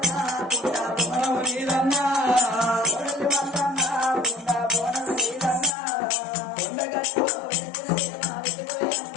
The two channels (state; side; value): drops out; right; at 5.7 s